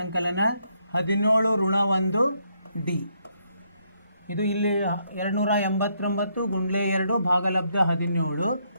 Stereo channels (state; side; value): inverted; both; correlation -0.75